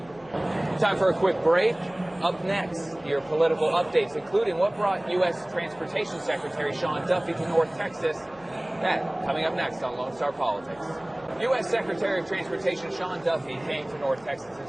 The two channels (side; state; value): left; noise; hum, 26 dB below the sound